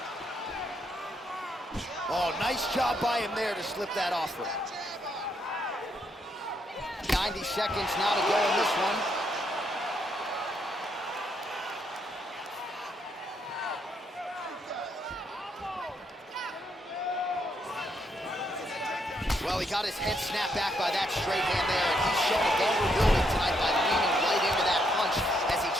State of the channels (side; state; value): both; normal; correlation 0.75